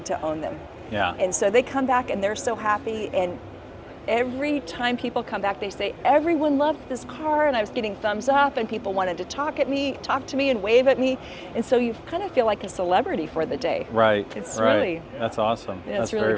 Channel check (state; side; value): identical; both; correlation 1.00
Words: to own them. Yeah. And so they come back and they're so happy. And every time people come back, they say, everyone loved this car, and I was getting thumbs up, and people wanted to talk to me and wave at me. And so you kind of feel like a celebrity for the day. Right. It's right. really. That's awesome. That's very,